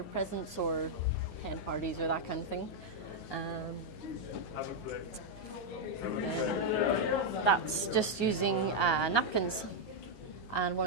presents or hen parties or that kind of thing. Then that's just using napkins and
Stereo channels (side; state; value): right; late; 9.3 ms